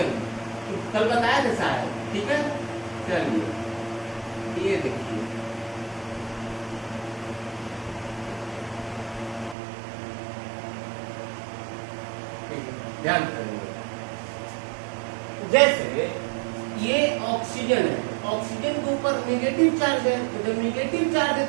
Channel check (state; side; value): drops out; left; at 9.6 s